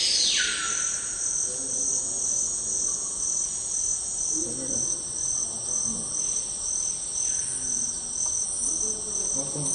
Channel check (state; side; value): identical; both; correlation 1.00